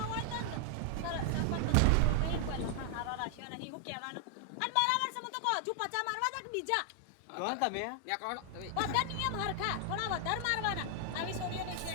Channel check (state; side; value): different; both; correlation 0.00